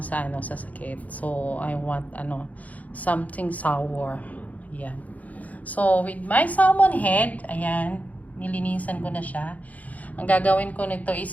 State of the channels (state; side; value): late; right; 0.075 ms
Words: sa sakit. So I want something sour. Ayan. So with my salmon head, ayan, nilinisan ko na siya. Ang gagawin ko nito